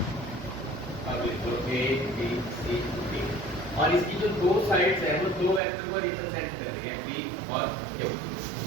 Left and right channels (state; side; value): drops out; left; at 5.6 s